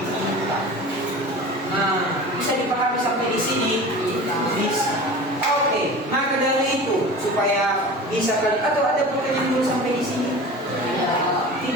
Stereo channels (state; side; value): normal; both; correlation 0.36